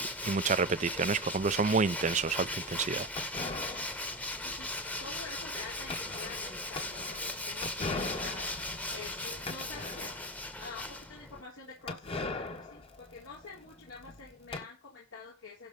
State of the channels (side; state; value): both; normal; correlation 0.20